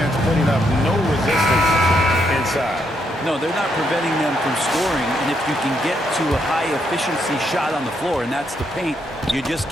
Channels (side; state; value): both; normal; correlation 0.77